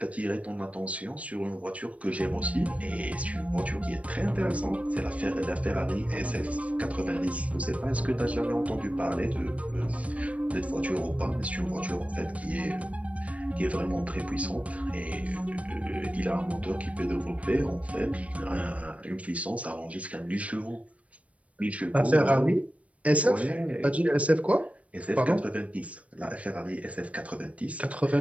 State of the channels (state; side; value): late; left; 0.065 ms